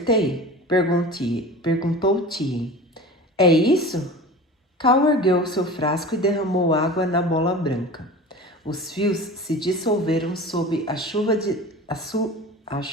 Perguntou Tien. É isso? Cal ergueu seu frasco e derramou água na bola branca. Os fios se dissolveram sob a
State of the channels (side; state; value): both; normal; correlation 0.35